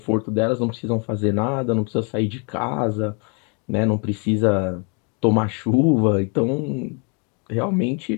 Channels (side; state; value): right; quieter; 35.5 dB